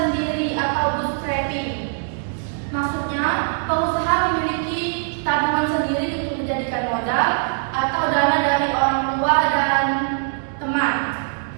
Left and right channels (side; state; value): left; silent; digital silence